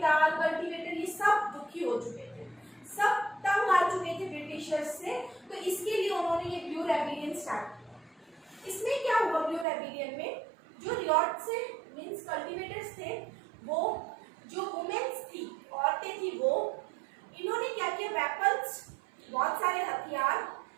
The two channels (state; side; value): drops out; left; at 9.7 s